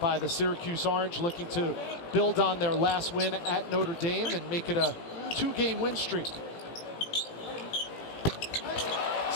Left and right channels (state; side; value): late; right; 17 ms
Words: the Syracuse Orange, looking to build on their last win at Notre Dame and make it a 2-game win streak.